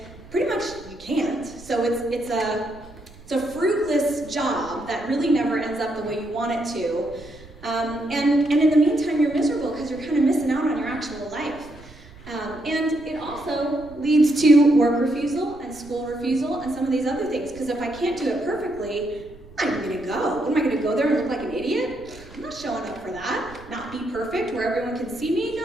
pretty much you can't. So it's a fruitless job that really never ends up the way you want it to. And in the meantime, you're miserable because you're kind of missing out on your actual life. And it also leads to work refusal and school refusal and some of these other things. Because if I can't do it perfectly, I'm going to go. What am I going to go there and look like an idiot? I'm not showing up for that. Not be perfect where everyone can see me?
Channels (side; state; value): right; noise; rumble, 21 dB below the sound